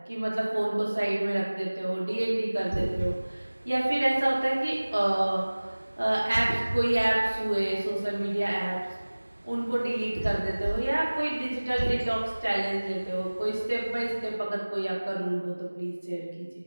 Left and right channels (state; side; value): inverted; both; correlation -1.00